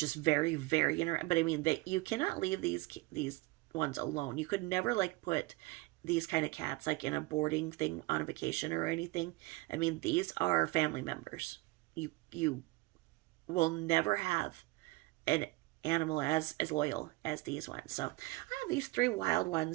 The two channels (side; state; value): left; quieter; 21.5 dB